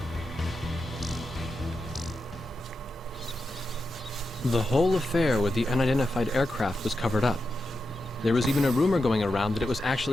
The whole affair with the unidentified aircraft was covered up. There was even a rumor going around that it was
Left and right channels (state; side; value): normal; both; correlation 0.88